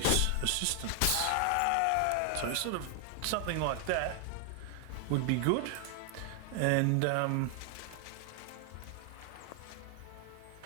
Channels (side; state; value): both; different; correlation 0.00